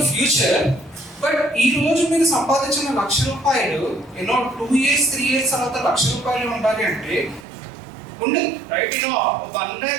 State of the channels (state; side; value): drops out; left; at 7.5 s